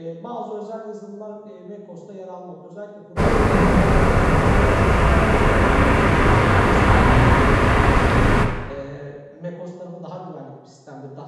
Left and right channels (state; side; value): identical; both; correlation 1.00